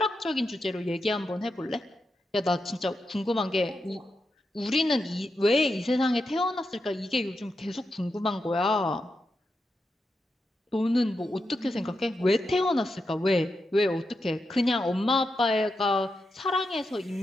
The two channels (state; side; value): normal; both; correlation 0.87